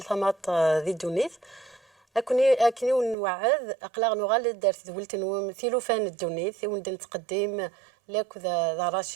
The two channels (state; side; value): drops out; left; at 3.2 s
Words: ذي الدونيث اكني ونوعد اقلاغ نغال دارت دولتن ثيلوفان الدونيث وندن تقدم لك ذا